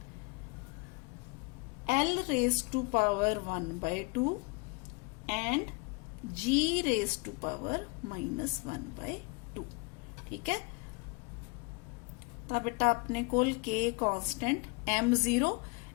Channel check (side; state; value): right; quieter; 28.6 dB